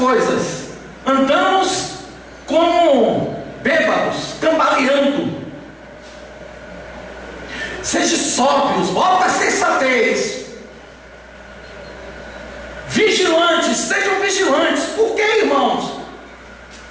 andamos como bêbados, cambaleando. Seja sóbrios, volta a sensatez. Vigilantes, sejam vigilantes. Por que, irmãos?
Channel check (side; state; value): both; identical; correlation 1.00